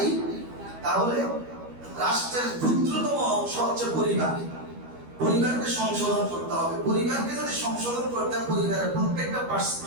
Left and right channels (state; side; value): late; left; 12 ms